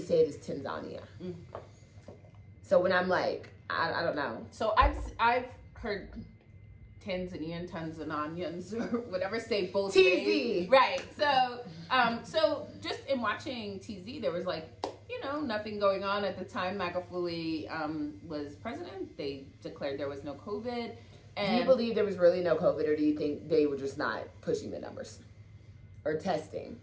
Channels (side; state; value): both; identical; correlation 1.00